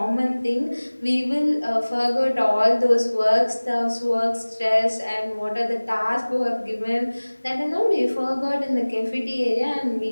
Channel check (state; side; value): inverted; both; correlation -1.00